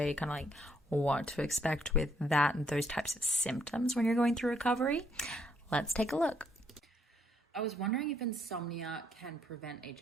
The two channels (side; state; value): both; normal; correlation 0.71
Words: kind of like what to expect with that and those types of symptoms when you're going through recovery. Let's take a look. I was wondering if insomnia can prevent